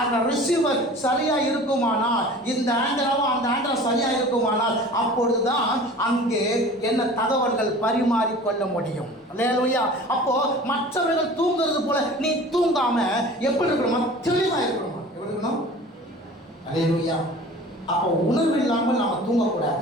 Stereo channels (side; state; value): both; normal; correlation 0.42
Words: ரிசீவர் சரியா இருக்குமானால், இந்த ஆண்டராவும் அந்த ஆண்டரா சரியா இருக்குமானால், அப்பொழுதுதான் அங்கே என்ன தகவல்கள் பரிமாறிக்கொள்ள முடியும். அல்லேலூயா. அப்போ மற்றவர்கள் தூங்குறது போல நீ தூங்காம எப்படி இருக்கணும், தெளிவா இருக்கணுமா, எப்படி இருக்கணும்? அல்லேலூயா. அப்போ உணர்வு இல்லாமல் நாம